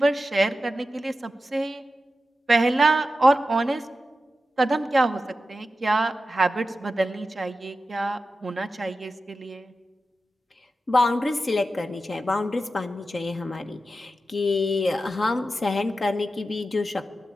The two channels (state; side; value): normal; both; correlation 0.91